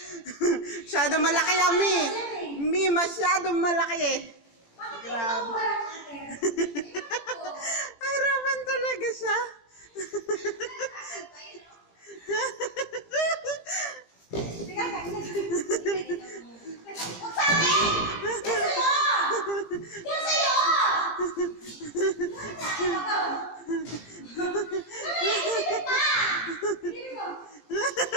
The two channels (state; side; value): late; right; 17 ms